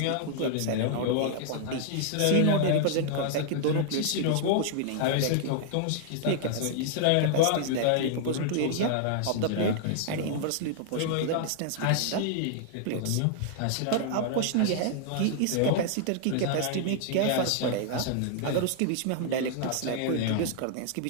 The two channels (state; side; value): different; both; correlation -0.01